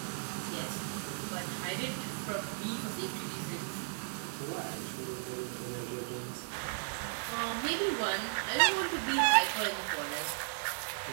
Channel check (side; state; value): left; silent; digital silence